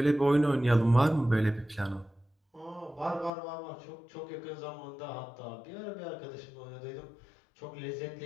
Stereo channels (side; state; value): right; drops out; at 3.3 s